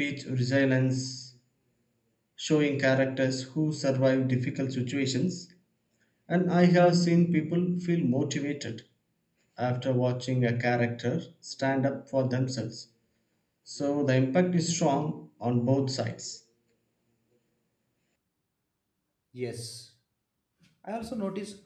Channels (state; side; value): identical; both; correlation 1.00